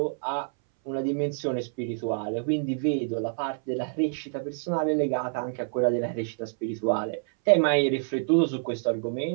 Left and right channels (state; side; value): silent; left; 59 dB below the other